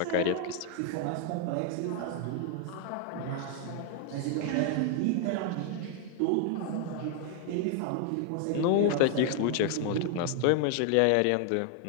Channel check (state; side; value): different; both; correlation 0.00